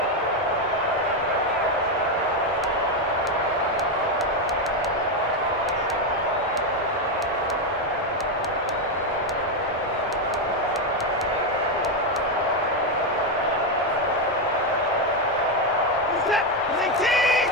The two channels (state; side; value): normal; both; correlation 0.06